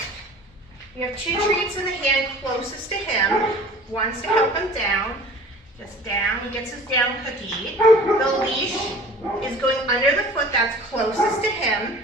We have two treats in the hand closest to him. One's to help him down. Just down. He gets his down cookie. The leash is going under the foot that's closest to him.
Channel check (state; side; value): normal; both; correlation 0.44